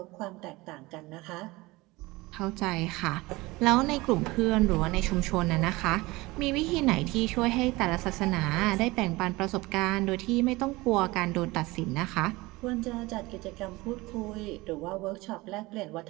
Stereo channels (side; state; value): left; quieter; 21.5 dB